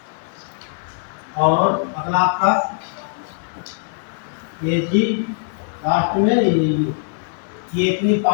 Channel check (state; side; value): silent; right; digital silence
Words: और अगला आपका ये जी लास्ट में ये इतनी